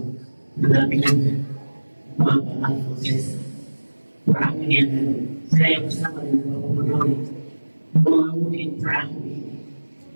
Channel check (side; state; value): both; inverted; correlation -1.00